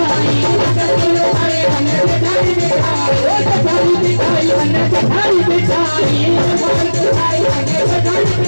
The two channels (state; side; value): inverted; both; correlation -1.00